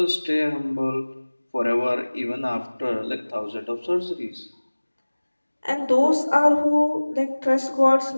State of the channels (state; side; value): inverted; both; correlation -1.00